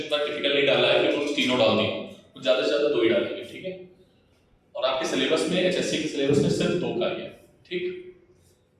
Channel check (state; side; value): identical; both; correlation 1.00